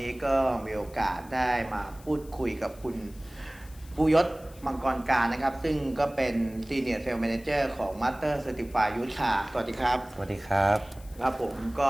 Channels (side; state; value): left; noise; hiss, 23 dB below the sound